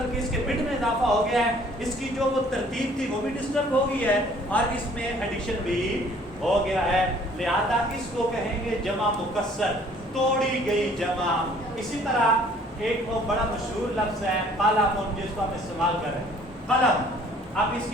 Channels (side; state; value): both; normal; correlation 0.57